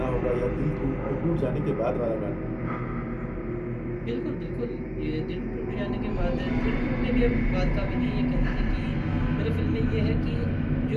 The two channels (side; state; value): both; identical; correlation 1.00